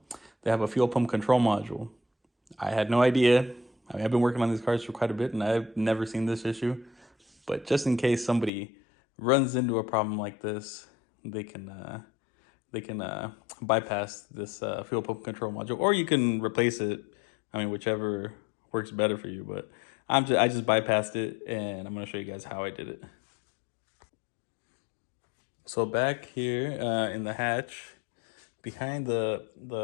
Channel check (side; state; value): right; drops out; at 8.5 s